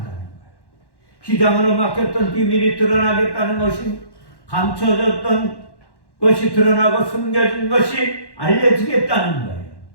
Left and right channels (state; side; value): late; right; 1.1 ms